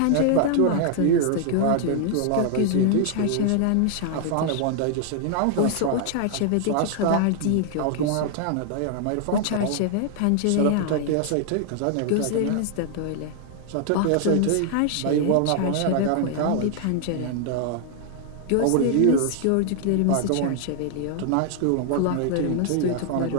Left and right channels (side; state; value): both; different; correlation 0.00